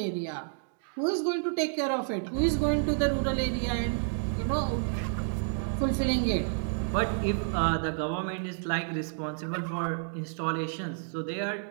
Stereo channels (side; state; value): left; silent; digital silence